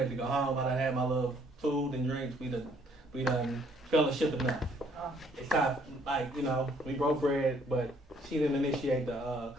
to go home. I done had my little food and drinks. We done fellowship enough. It's time, like we broke bread, but she didn't initiate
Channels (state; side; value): normal; both; correlation 0.64